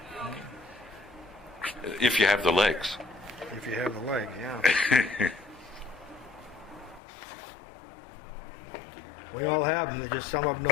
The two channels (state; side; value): drops out; right; at 7.0 s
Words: If you have the legs. If you have the leg, yeah. We all have them, just some of them